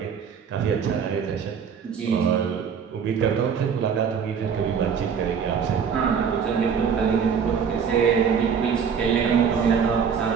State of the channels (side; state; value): left; quieter; 6.9 dB